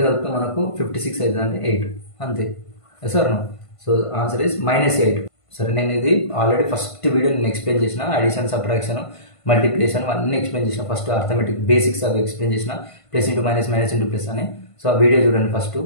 కలిపితే మనకు 56 అవుతుంది అంటే 8 అంతే సార్. So answer is -8. సరే నేను ఇది ఆల్రెడీ ఫస్ట్ వీడియో నేను ఎక్స్ప్లెయిన్ చేసిన, అడిషన్ సబ్ట్రాక్షన్ మల్టిప్లికేషన్ అన్నీ ఎక్స్ప్లెయిన్ చేసిన. ఫస్ట్ అర్థమెటిక్ బేసిక్స్ అవి ఎక్స్ప్లెయిన్ చేసిన, plus into minus minus into plus అని. సో ఆ వీడియో చూడండి ఫస్ట్,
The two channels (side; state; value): right; late; 1.5 ms